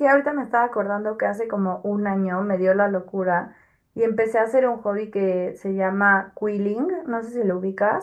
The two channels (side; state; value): both; identical; correlation 1.00